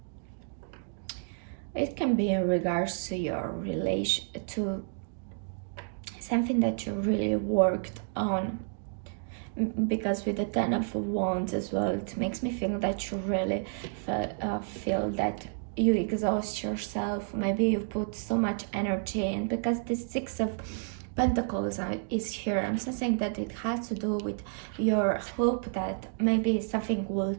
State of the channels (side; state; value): left; silent; digital silence